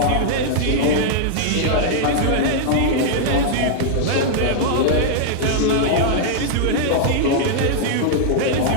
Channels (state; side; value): different; both; correlation -0.01